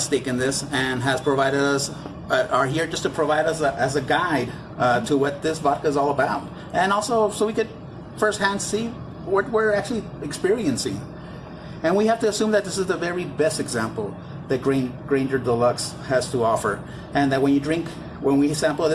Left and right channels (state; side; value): identical; both; correlation 1.00